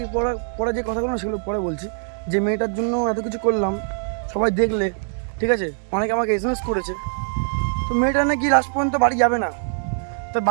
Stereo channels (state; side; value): silent; left; digital silence